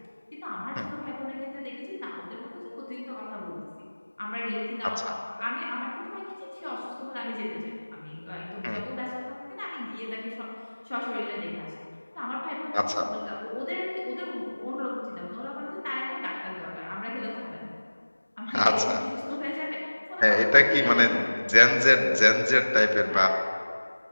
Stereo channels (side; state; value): both; inverted; correlation -1.00